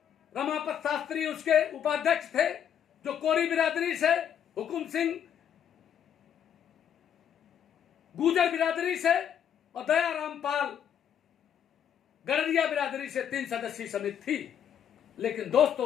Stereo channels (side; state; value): right; quieter; 9.0 dB